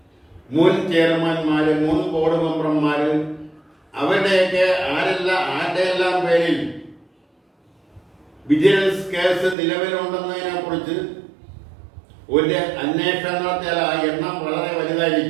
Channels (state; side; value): drops out; left; at 9.6 s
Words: മുൻ ചെയർമാൻമാര്, മുൻ ബോർഡ് മെമ്പർമാര്, അവരുടെയൊക്കെ ആരുടെയെല്ലാം പേരിൽ വിജിലൻസ് കേസ് നിലവിലുണ്ടെന്നതിനെ കുറിച്ച് ഒരു അന്വേഷണം നടത്തിയാൽ ആ എണ്ണം വളരെ